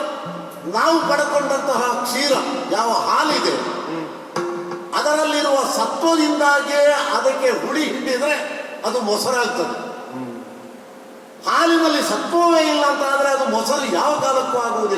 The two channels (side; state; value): both; identical; correlation 1.00